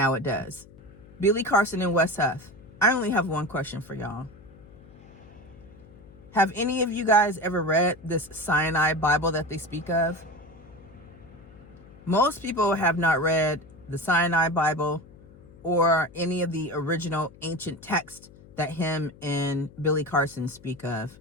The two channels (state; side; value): noise; left; hum, 22 dB below the sound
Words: it does. Billy Carson and Wes Huff. I only have one question for y'all. Have any of you guys ever read this Sinai Bible that they speak of? Most people have not read the Sinai Bible or any of the original ancient texts that him and Billy Carson speak of,